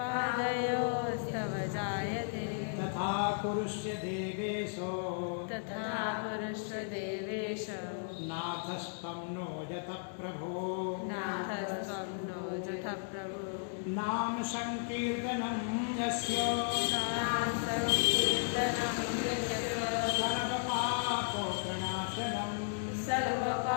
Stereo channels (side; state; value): right; silent; digital silence